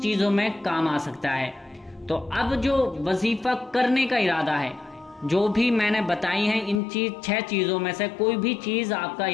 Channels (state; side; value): drops out; right; at 6.8 s